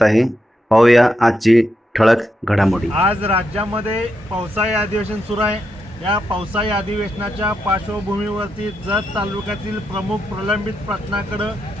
आहे. पाहूया आजची ठळक घडामोडी. आज राज्यामध्ये पावसाळी अधिवेशन सुरू आहे. या पावसाळी अधिवेशनाच्या पार्श्वभूमीवरती जत तालुक्यातील प्रमुख प्रलंबित प्रश्नाकडे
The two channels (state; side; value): normal; both; correlation 0.84